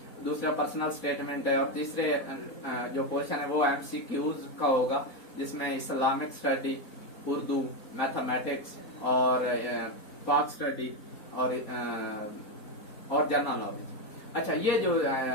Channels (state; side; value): late; right; 4.2 ms